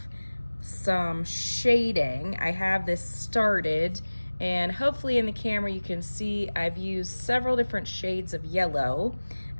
some shading. I have this started, and hopefully in the camera you can see I've used several different shades of yellow,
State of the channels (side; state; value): both; inverted; correlation -1.00